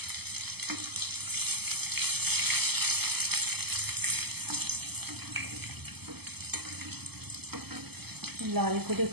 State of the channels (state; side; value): late; left; 0.97 ms